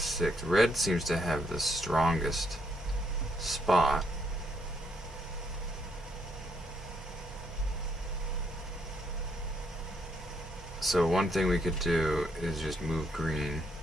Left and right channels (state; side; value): normal; both; correlation 0.73